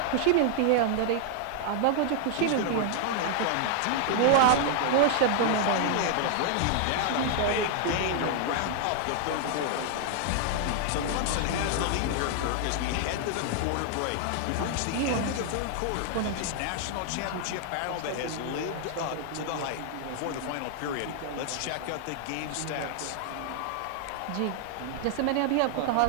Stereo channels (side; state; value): both; different; correlation 0.00